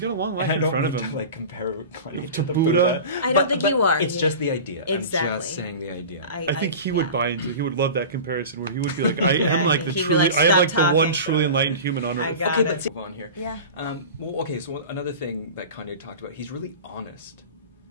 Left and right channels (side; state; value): both; inverted; correlation -0.34